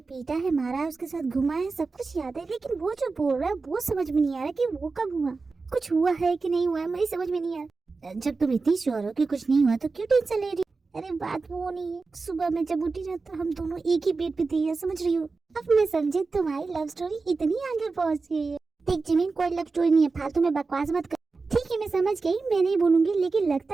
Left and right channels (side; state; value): left; quieter; 4.1 dB